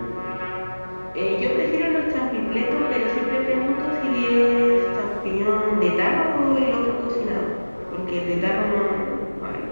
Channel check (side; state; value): both; inverted; correlation -1.00